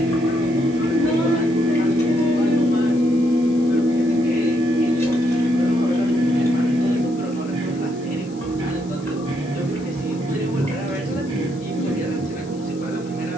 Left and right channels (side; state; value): left; noise; hiss, 24 dB below the sound